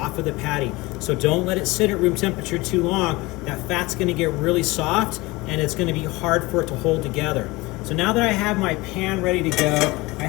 of the patty. So don't let it sit at room temperature too long. That fat's going to get really soft and it's going to be hard for it to hold together. So now that I have my pan ready to go,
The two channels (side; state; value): right; quieter; 22.1 dB